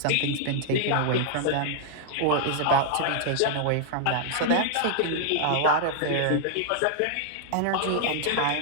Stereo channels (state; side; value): different; both; correlation -0.01